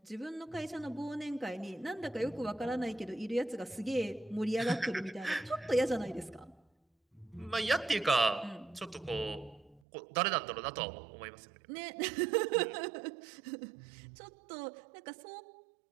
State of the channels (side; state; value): left; drops out; at 9.8 s